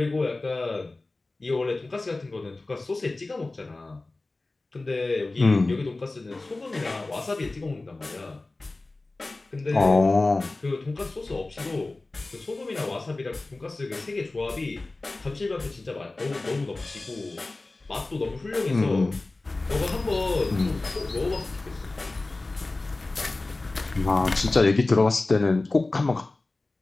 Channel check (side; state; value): right; quieter; 3.1 dB